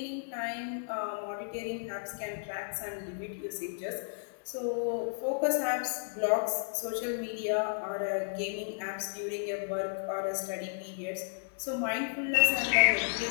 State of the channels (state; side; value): silent; right; 56 dB below the other